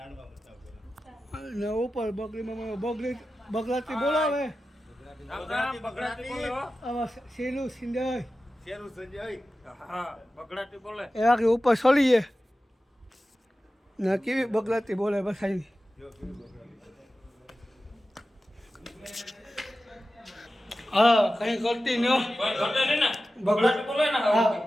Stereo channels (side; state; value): both; normal; correlation 0.94